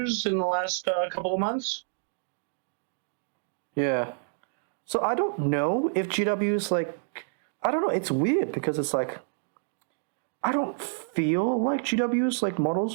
in the last couple of months. Yeah. So I don't know if GW's I don't know, it's weird because it's I don't feel like GW's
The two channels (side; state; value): left; silent; digital silence